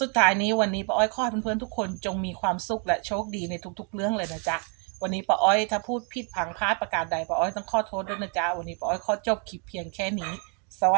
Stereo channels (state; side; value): quieter; left; 35.9 dB